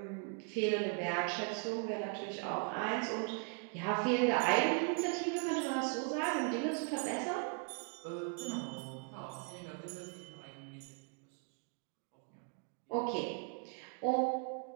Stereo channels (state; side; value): quieter; left; 39.8 dB